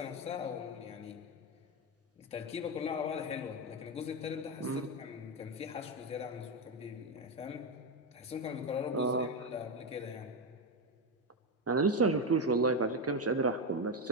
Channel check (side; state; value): both; normal; correlation 0.10